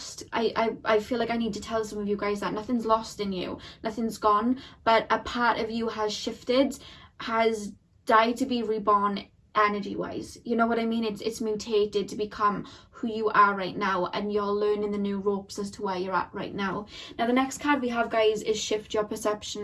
I feel like I need to tell some of you guys that nothing's lost in you, nothing's gone, but a part of you has shifted, has died to be reborn energy wise. You know what I mean? It's mutated to become who you are right now, and you're learning the new ropes as to where you're at right now. Now the next card we have, guys, is Shift Your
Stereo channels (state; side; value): identical; both; correlation 1.00